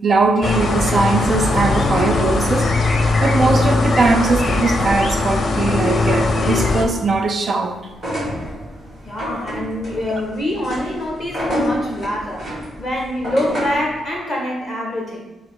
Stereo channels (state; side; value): normal; both; correlation 0.80